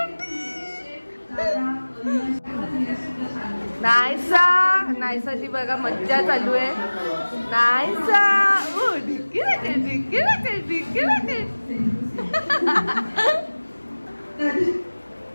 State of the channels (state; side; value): inverted; both; correlation -1.00